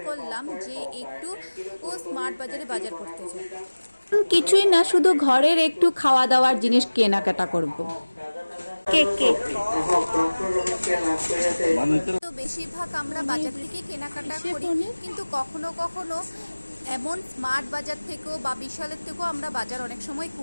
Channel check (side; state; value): both; inverted; correlation -1.00